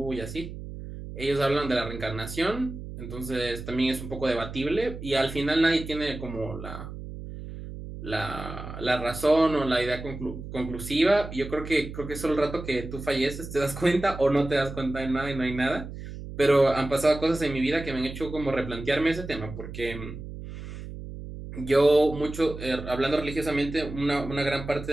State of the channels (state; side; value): noise; right; hum, 10 dB below the sound